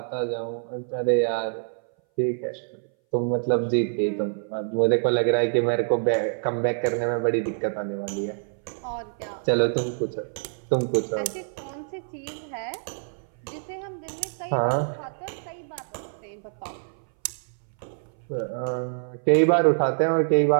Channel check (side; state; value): left; silent; 59 dB below the other